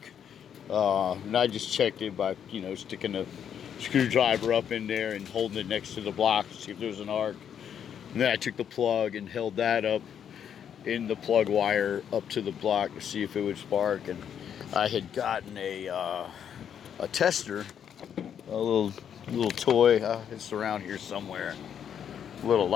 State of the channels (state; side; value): quieter; right; 8.6 dB